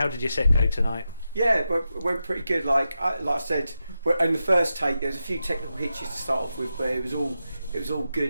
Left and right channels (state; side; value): inverted; both; correlation -0.89